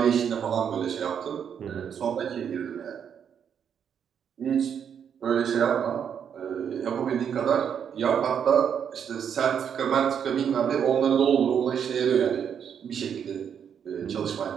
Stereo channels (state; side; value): quieter; left; 8.0 dB